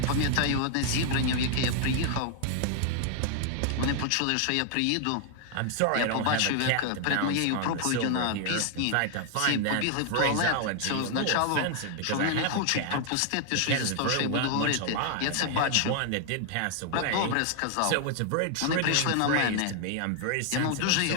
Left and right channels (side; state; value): both; different; correlation 0.00